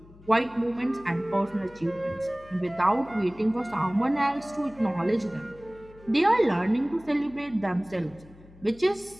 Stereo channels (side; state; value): left; noise; hum, 23 dB below the sound